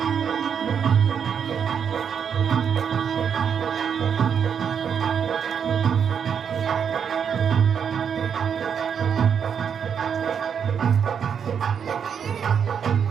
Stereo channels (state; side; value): quieter; left; 7.4 dB